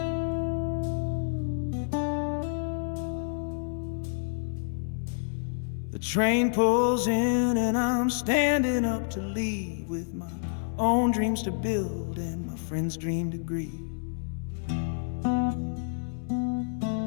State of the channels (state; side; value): silent; right; digital silence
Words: The train pulls in and I'm standing up to leave, with my own dreams to build and my friend's dream to grieve.